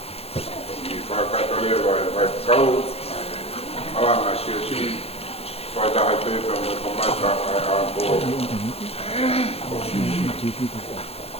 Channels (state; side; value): late; right; 0.29 ms